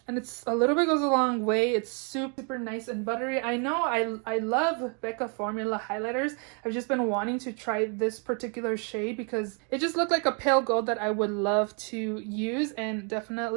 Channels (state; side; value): quieter; left; 37.8 dB